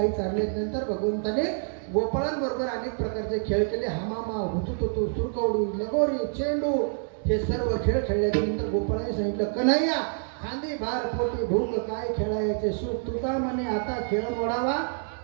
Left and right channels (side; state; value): left; silent; 60 dB below the other